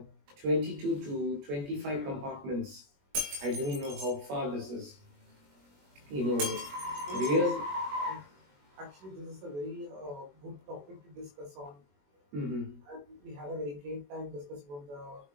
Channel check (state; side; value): late; left; 21 ms